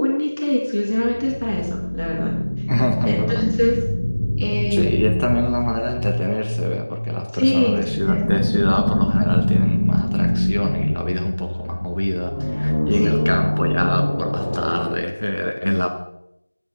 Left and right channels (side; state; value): both; inverted; correlation -1.00